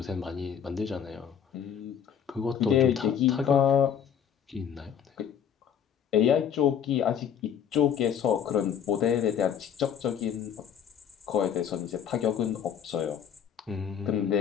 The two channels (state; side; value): quieter; right; 8.4 dB